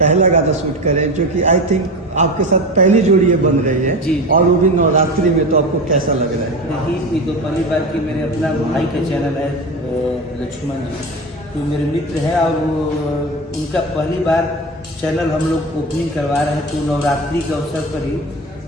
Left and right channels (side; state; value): both; normal; correlation 0.25